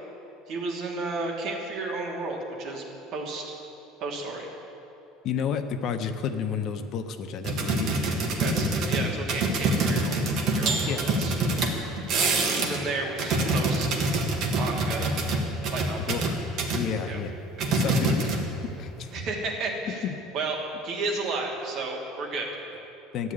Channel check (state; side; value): normal; both; correlation 0.47